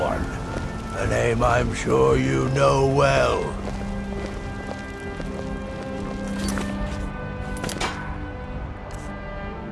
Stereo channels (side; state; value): both; identical; correlation 1.00